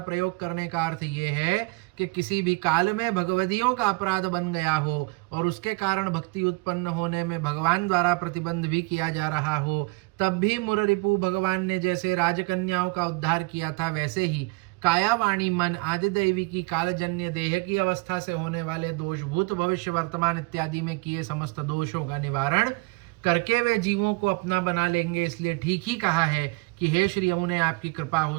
करने का अर्थ ये है कि किसी भी काल में भगवदियों का अपराध बन गया हो और उसके कारण भक्ति उत्पन्न होने में भगवान द्वारा प्रतिबंध भी किया जा रहा हो, तब भी मुररिपु भगवान ने जैसे राजकन्याओं का उद्धार किया था वैसे ही काया वाणी मन आदि दैवी की कालजन्य देह की अवस्था से होने वाले दोष भूत भविष्य वर्तमान इत्यादि में किए समस्त दोषों का निवारण करके वे जीवों को अपना बना लेंगे। इसलिए ठीक ही कहा है कि हे श्री यमुने आपकी कृपा हो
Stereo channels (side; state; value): left; quieter; 26.1 dB